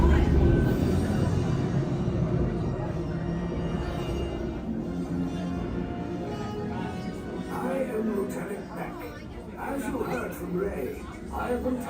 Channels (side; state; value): both; identical; correlation 1.00